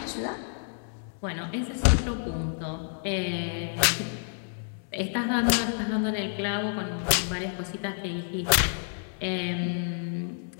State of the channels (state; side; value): silent; right; digital silence